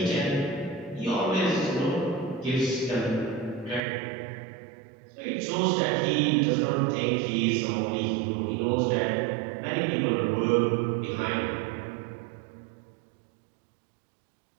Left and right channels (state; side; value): drops out; left; at 3.8 s